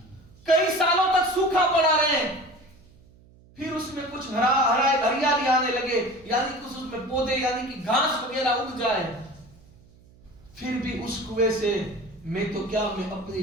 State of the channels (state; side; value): noise; right; hum, 27 dB below the sound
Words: کئی سالوں تک سوکھا پڑا رہے, پھر اس میں کچھ ہریالی آنے لگے, یعنی کچھ اس میں پودے یعنی کہ گھاس وغیرہ اگ جائے, پھر بھی اس کنویں سے میں اپنی